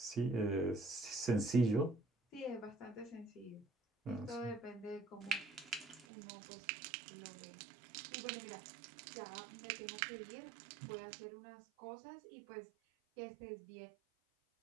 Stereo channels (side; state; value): left; drops out; at 6.1 s